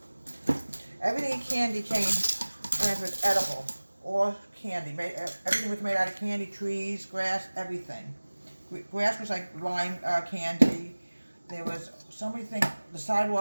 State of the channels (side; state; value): both; inverted; correlation -1.00